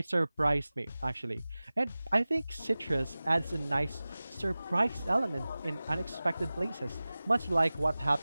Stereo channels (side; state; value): both; inverted; correlation -0.98